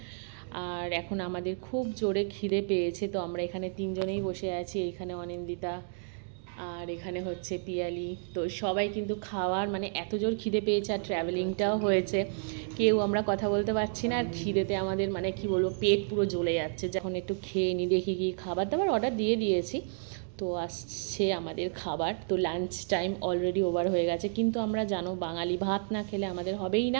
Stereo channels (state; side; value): silent; left; digital silence